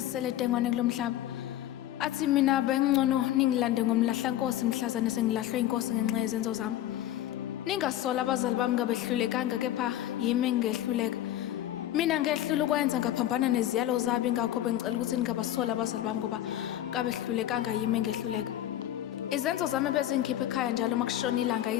dengwane kulomhlaba. Athi mina bengcono ningilande ngoMlahlankosi mhlazane sengilahlwe inkosi ngenxa yezenzo zami. Ningasola abazali bami ngabehlulekanga kepha yimi engehluleka. Mina ngehlula ukwenza ngaphambana neziyalo zabo ingakho bengicela ukuthi ningabasola abazali bami ngoba ngabehlulekanga yimi engehluleka. Izenzo zami bezingikhipha ekhaya njalo makushona ilanga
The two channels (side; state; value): right; quieter; 12.8 dB